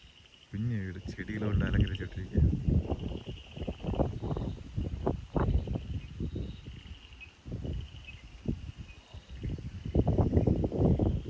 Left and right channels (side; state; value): both; identical; correlation 1.00